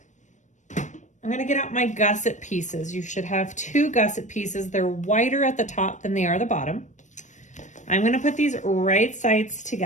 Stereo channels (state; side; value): late; right; 0.35 ms